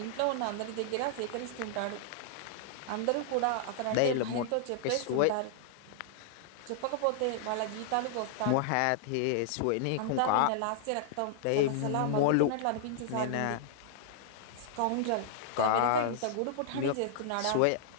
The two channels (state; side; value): different; both; correlation -0.01